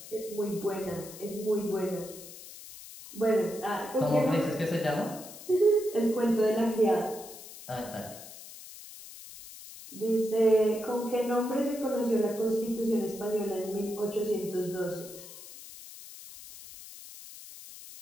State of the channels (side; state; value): left; noise; hiss, 15 dB below the sound